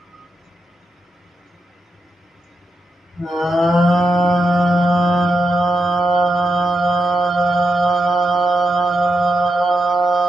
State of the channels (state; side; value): normal; both; correlation 0.85